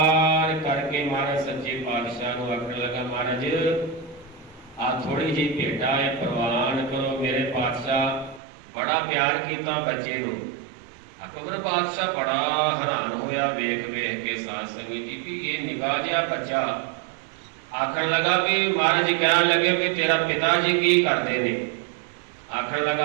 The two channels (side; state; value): left; drops out; at 8.4 s